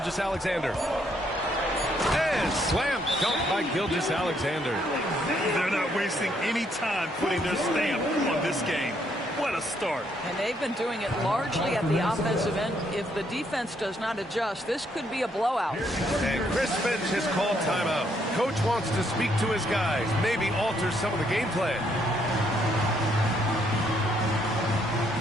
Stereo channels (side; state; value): both; normal; correlation 0.71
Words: And slam dunk by Gilgeous-Alexander. They're not wasting any time putting their stamp on this game. What a start. And they've been doing it largely at the offensive end. If the defense does not adjust, this could be a blowout. And Chris Finch has called timeout. Coach wants to speak to his guys, maybe alter some of the game plan.